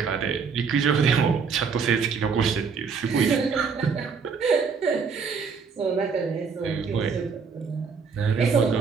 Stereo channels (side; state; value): left; quieter; 5.6 dB